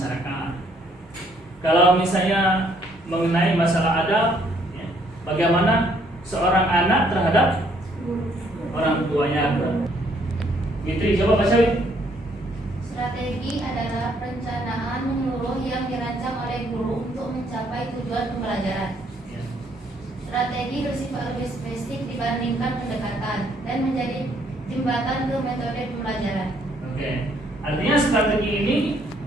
Kalau misalnya mengenai masalah adab, ya, bagaimana seorang anak terhadap orang tuanya. Fitri, coba baca. Strategi adalah perencanaan menyeluruh yang dirancang oleh guru untuk mencapai tujuan pembelajaran. Ya. Strategi bersifat lebih spesifik dibandingkan pendekatan dan menjadi jembatan ke metode pembelajaran. Oke. Artinya strategi ini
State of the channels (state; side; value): normal; both; correlation 0.67